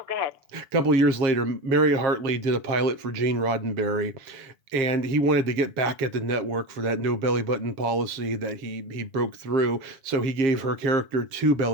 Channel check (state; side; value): late; left; 7.2 ms